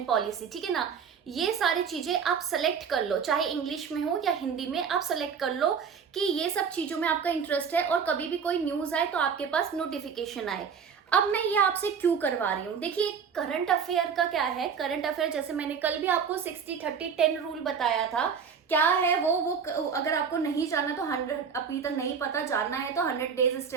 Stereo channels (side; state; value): left; quieter; 6.5 dB